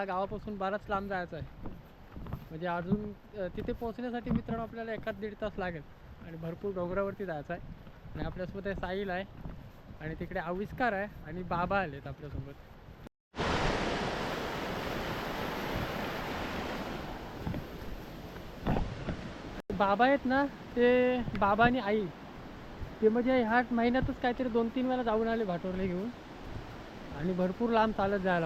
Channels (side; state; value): both; identical; correlation 1.00